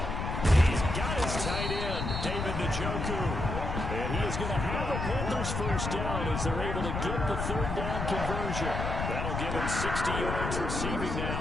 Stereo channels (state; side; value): noise; left; rumble, 3 dB below the sound